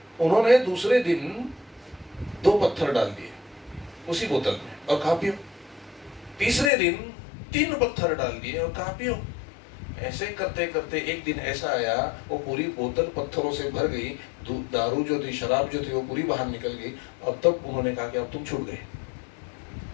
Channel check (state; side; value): drops out; right; at 6.7 s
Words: उन्होंने दूसरे दिन 2 पत्थर डाल दिए उसी बोतल में और कहा पियो। तीसरे दिन 3 पत्थर डाल दिए और कहा पियो। ऐसे करते करते एक दिन ऐसा आया, वो पूरी बोतल पत्थरों से भर गई। दारू जो थी, शराब जो थी, वो पूरी बाहर निकल गई। अब तब उन्होंने कहा कि अब तुम छूट गए।